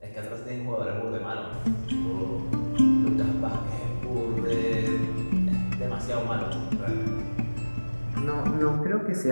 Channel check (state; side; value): inverted; both; correlation -1.00